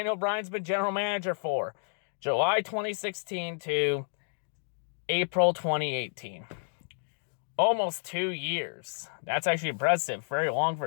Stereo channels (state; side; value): silent; right; digital silence